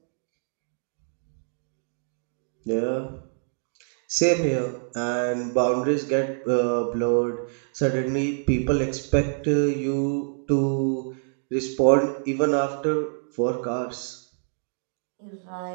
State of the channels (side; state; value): left; silent; digital silence